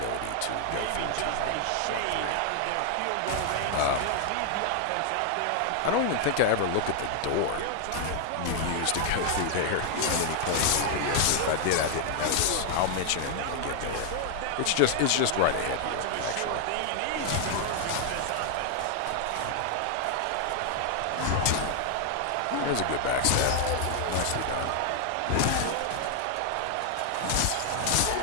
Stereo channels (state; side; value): different; both; correlation 0.00